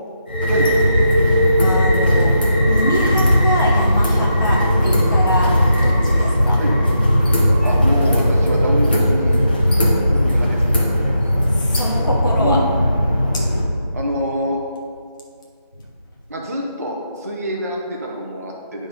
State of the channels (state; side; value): inverted; both; correlation -0.82